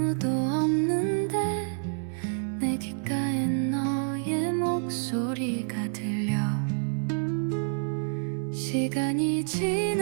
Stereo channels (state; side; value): silent; left; 59 dB below the other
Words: 없는데 내 귓가에 너의 목소리가 들려. 시간이